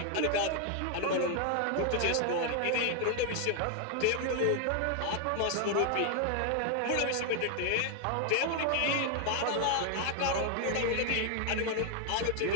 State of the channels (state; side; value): different; both; correlation 0.00